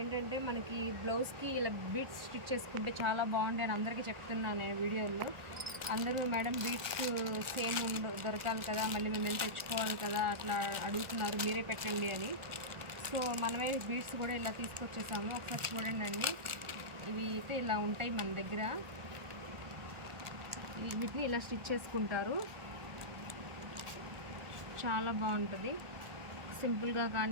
మనకి బ్లౌజ్కి ఇలా బీట్స్ స్టిచ్ చేసుకుంటే చాలా బాగుంటాయి అని అందరికీ చెప్తున్నాను నేను వీడియోలో. అందరూ మేడం బీట్స్ సేమ్ దొరకాలి కదా, మళ్ళీ మేము ఎంత తెచ్చుకోవాలి కదా అట్లా అడుగుతున్నారు, మీరే పెట్టండి అని. సో మనమే బీట్స్ కూడా ఇలా తీసుకొచ్చేసాము. ఒకసారి చూడండి అండి. ఇవి అయితే ఇలా ఉంటాయి మన దగ్గర. వీటిని ఇలా స్టిచ్ చేసుకుంటారు. చాలా బాగుంటుంది. సింపుల్గా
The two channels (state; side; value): late; left; 1.4 ms